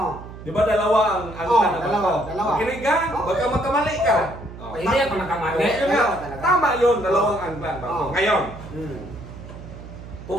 Di ba dalawa ang angkla na bag dalawa, ko? dalawa. Makinig ka, baka magkamali ka. Oh, Hindi ako nakamali. Ngayon nga, Dalawa talaga. tama yun, dalawang angkla ang bag ko. Oh. Ngayon, Hmm.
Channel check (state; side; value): noise; right; hum, 14 dB below the sound